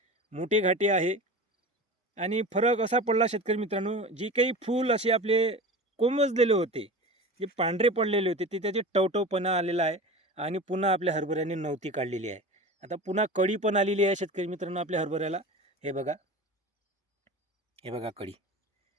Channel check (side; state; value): both; normal; correlation 0.33